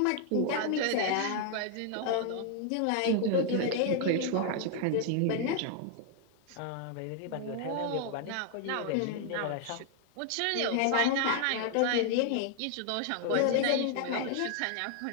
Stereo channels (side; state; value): both; different; correlation 0.00